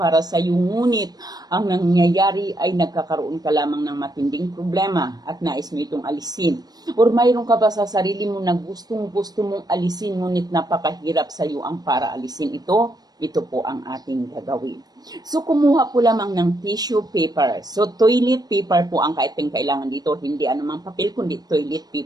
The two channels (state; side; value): late; left; 0.19 ms